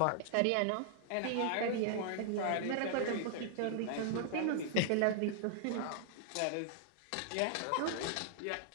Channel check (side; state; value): both; different; correlation -0.01